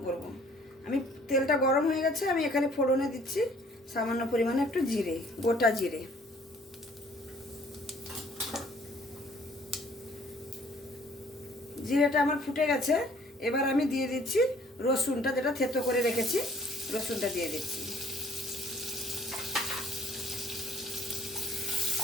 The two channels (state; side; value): normal; both; correlation 0.58